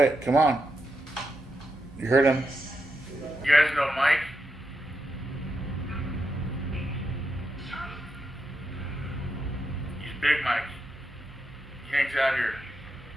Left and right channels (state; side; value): noise; right; hum, 23 dB below the sound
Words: Come on. You heard him. You guys know Mike? He's Big Mike. He hangs out here.